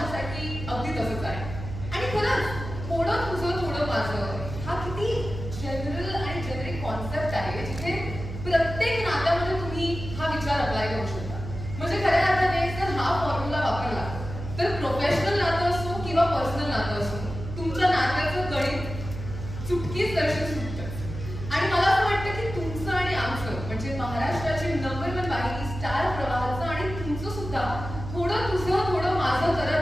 अगदी तसंच आहे. आणि खरंच थोडं तुझं थोडं माझं हा किती जनरल आणि जेनेरिक कॉन्सेप्ट आहे जिथे प्रत्येक नात्यामध्ये तुम्ही हा विचार अप्लाय करू शकता. म्हणजे खऱ्या अर्थाने जर हा फॉर्म्युला वापरला तर प्रोफेशनल नातं असो किंवा पर्सनल नातं असो, तुमच्या नात्याचं गणित चुटकीच दर्शन सुटतं. आणि मला असं वाटतं की तुमचं आणि आमचं म्हणजे महाराष्ट्राची नंबर 1 वाहिनी स्टार प्रवाहाचं आणि तुमचं सुद्धा थोडं तुझं थोडं माझं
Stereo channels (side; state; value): right; noise; hum, 9 dB below the sound